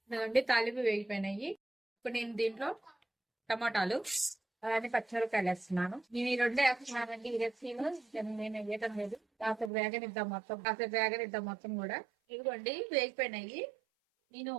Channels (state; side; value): drops out; left; at 9.7 s